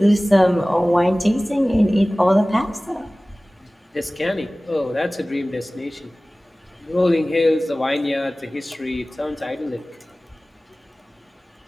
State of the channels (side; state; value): both; normal; correlation 0.98